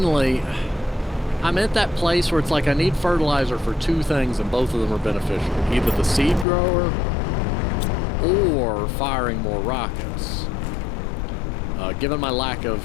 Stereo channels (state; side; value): drops out; right; at 6.5 s